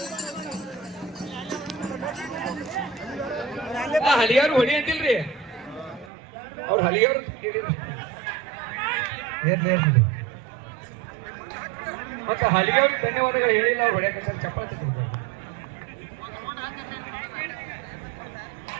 ಹಲಿಯಾರು ಹೊಡಿ ಅಂತಿಲ್ರಿ, ಅವ್ರು ಹಲಿಯವ್ರು ಮತ್ತೆ ಹಲಿಯವ್ರಿಗೆ ಧನ್ಯವಾದಗಳು ಹೇಳಿಲ್ಲ. ಅವ್ರು ಹೊಡ್ಯಾಕ ಚಪ್ಪಾಳೆ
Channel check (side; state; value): left; drops out; at 6.1 s